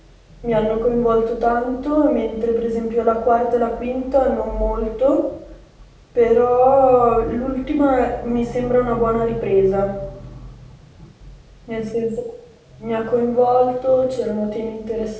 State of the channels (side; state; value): both; identical; correlation 1.00